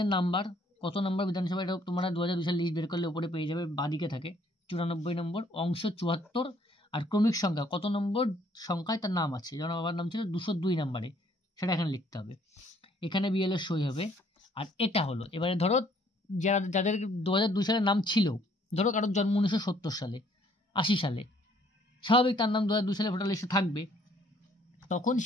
নাম্বার, কত নম্বর বিধানসভা, এটা তোমরা 2002 সাল লিস্ট বের করলে উপরে পেয়ে যাবে, বাদিকে থাকে 94 নম্বর, অংশ 74। আর ক্রমিক সংখ্যা, কত নম্বর সংখ্যায় তার নাম আছে, যেমন বাবার নাম ছিল 202 নম্বরে, সেটা এখানে লিখতে হবে। এখানে বিএলও সই হবে। আর এটা হলো, এবারে ধরো যাদের 2002 সালে নাম ছিল, ধরো কারোর জন্ম 1970 সালে, 80 সালে, স্বাভাবিক তার নাম 2002 সালে ভোটার লিস্টে থাকবে, তখন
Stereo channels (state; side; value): normal; both; correlation 0.63